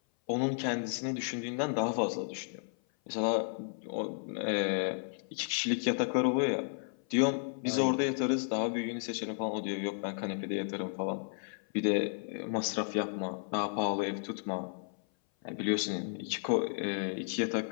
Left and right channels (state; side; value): silent; right; 56 dB below the other